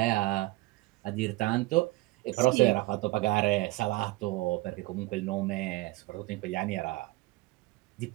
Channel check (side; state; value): left; quieter; 21.0 dB